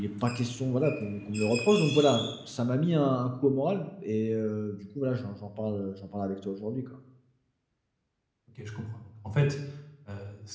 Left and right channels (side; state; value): both; identical; correlation 1.00